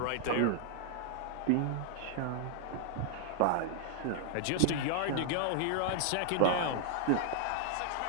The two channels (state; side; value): different; both; correlation 0.00